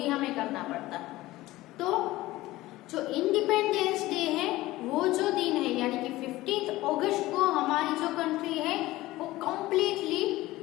हमें करना पड़ता. तो जो इंडिपेंडेंस डे है वो जो दिन है, यानी कि 15 अगस्त को हमारी जो कंट्री है वो कम्प्लीटली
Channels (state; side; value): quieter; right; 17.7 dB